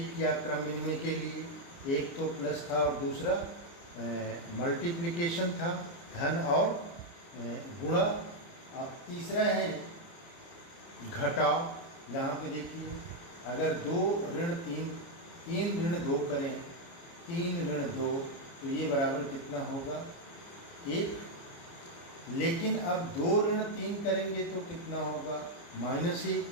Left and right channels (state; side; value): late; right; 29 ms